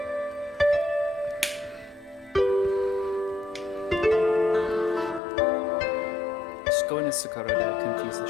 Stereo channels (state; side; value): drops out; right; at 5.2 s